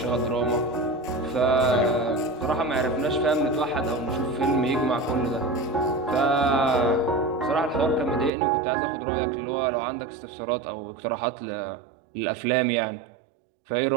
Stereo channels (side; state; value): left; drops out; at 8.3 s